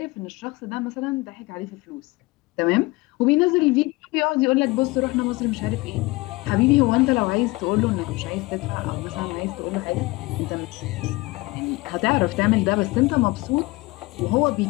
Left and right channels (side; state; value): right; quieter; 22.5 dB